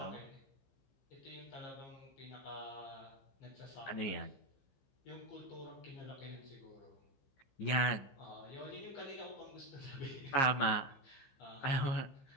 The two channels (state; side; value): late; right; 15 ms